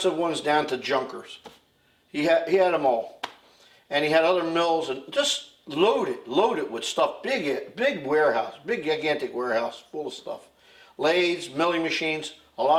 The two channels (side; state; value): both; identical; correlation 1.00